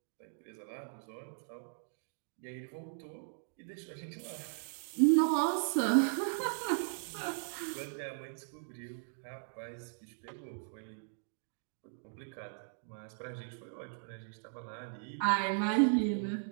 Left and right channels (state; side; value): silent; left; digital silence